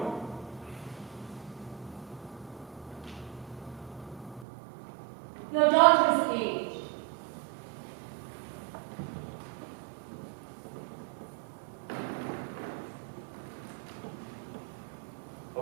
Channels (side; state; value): left; drops out; at 4.5 s